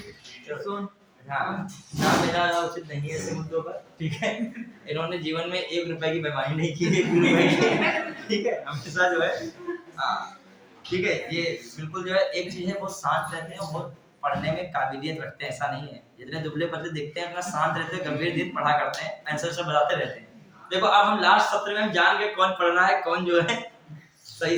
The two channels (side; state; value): both; identical; correlation 1.00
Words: हाँ, नाम लेना उचित नहीं है ऐसे मुद्दों पर। ठीक है, इन्होंने जीवन में 1 रुपए की बेईमानी नहीं की है। ठीक है, हमेशा जो है, हाँ ठीक है, ये बिल्कुल जो है एक चीज है, बहुत शांत रहते हैं, बहुत पढ़ने में काबिलियत रखते हैं, ऐसा नहीं है। जितने दुबले पतले दिखते हैं अपना शांत रहते हैं, गंभीर धीर पढ़ा करते हैं, आंसर सब बताते रहते हैं। देखो अब हम लास्ट सत्र में हम जान गए कौन पढ़ रहा है, कौन जो है